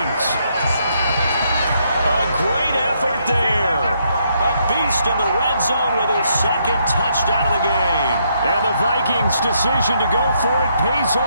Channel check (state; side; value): inverted; both; correlation -0.74